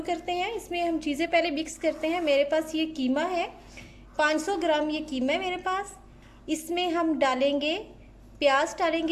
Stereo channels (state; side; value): identical; both; correlation 1.00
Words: करते हैं। इसमें हम चीज़ें पहले मिक्स करते हैं। मेरे पास ये कीमा है, 500 ग्राम ये कीमा है मेरे पास। इसमें हम डालेंगे प्याज,